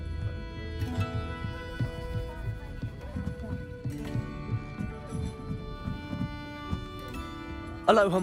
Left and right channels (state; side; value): identical; both; correlation 1.00